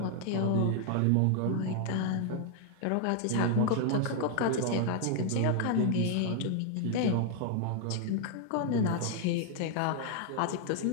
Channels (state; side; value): different; both; correlation 0.00